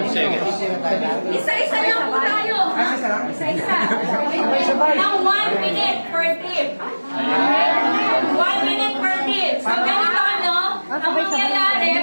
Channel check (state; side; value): inverted; both; correlation -1.00